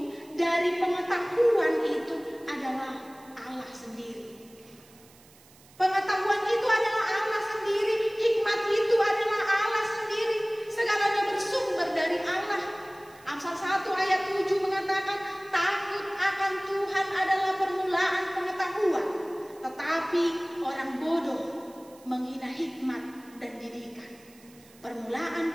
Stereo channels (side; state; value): right; noise; hiss, 26 dB below the sound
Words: dari pengetahuan itu adalah Allah sendiri. Pengetahuan itu adalah Allah sendiri, hikmat itu adalah Allah sendiri. Segalanya bersumber dari Allah. Amsal 1 ayat 7 mengatakan, takut akan Tuhan adalah permulaan pengetahuan, tetapi orang bodoh menghina hikmat dan didikan. Permulaan